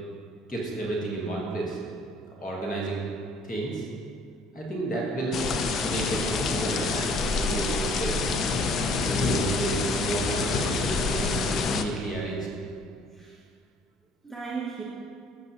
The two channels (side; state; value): both; normal; correlation 0.57